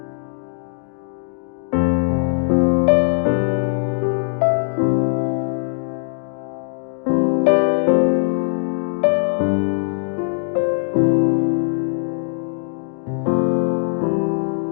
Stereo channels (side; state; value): right; silent; digital silence